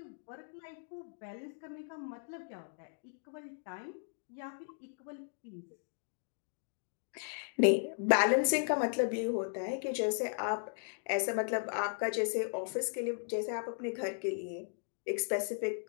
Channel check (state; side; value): silent; right; digital silence